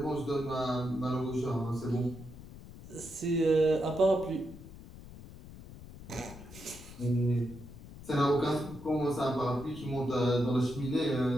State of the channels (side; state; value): left; noise; rumble, 16 dB below the sound